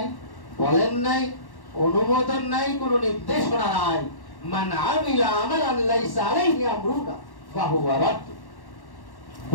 বলেন নাই, অনুমোদন নাই, কোনো নির্দেশনা নাই। মান আমিলা আমালান লাইসা আলাইহি আমরুনা ফাহুয়া রাদ্দ।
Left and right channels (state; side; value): late; right; 1.1 ms